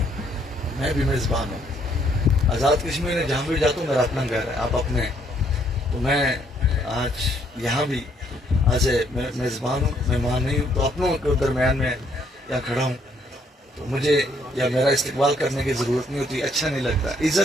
میں بھی میزبان ہوں۔ آزاد کشمیر میں جہاں بھی جاتا ہوں میرا اپنا گھر ہے، آپ اپنے ہیں، تو میں آج یہاں بھی ایز اے میزبان ہوں، مہمان نہیں ہوں، تو اپنوں کے درمیان میں یہاں کھڑا ہوں، تو مجھے یا میرا استقبال کرنے کی ضرورت نہیں ہوتی، اچھا نہیں لگتا۔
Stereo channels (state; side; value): normal; both; correlation 0.68